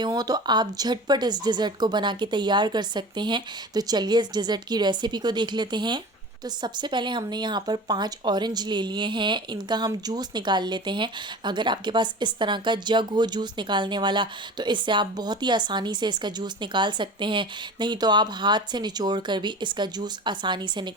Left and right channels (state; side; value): normal; both; correlation 0.36